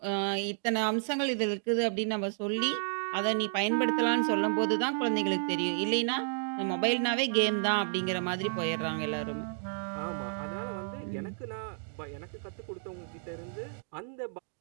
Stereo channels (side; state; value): left; silent; digital silence